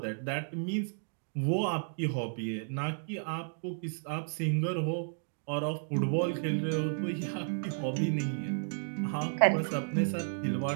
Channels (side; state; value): left; silent; digital silence